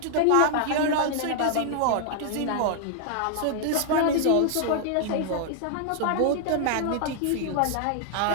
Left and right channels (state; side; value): different; both; correlation -0.01